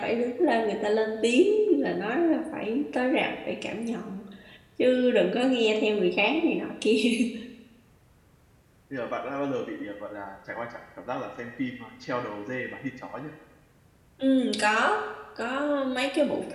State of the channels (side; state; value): both; identical; correlation 1.00